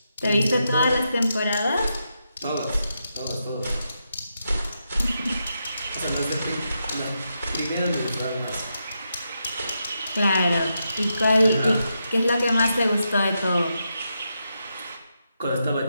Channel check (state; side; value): inverted; both; correlation -0.85